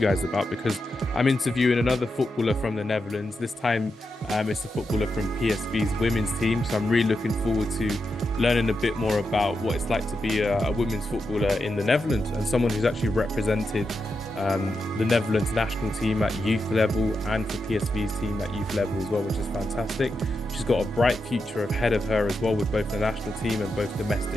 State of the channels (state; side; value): normal; both; correlation 0.87